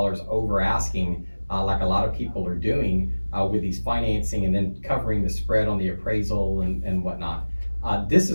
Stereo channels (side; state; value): both; inverted; correlation -1.00